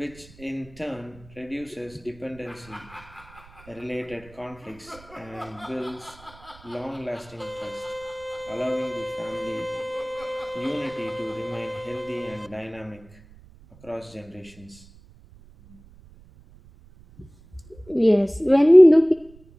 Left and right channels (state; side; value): noise; right; rumble, 23 dB below the sound